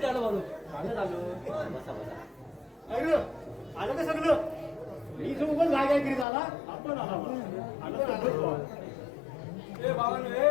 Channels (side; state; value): right; drops out; at 6.2 s